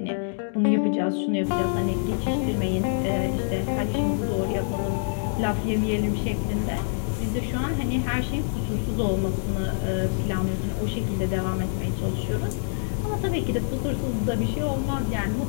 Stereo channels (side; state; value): right; silent; digital silence